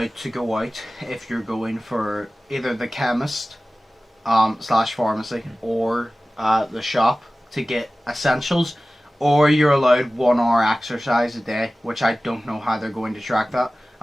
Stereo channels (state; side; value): normal; both; correlation 0.97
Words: to go out if you're going for either the chemist / pharmacy or the shop to get essentials, or you're allowed 1 hour exercise a day, which I don't know how they're going to track that.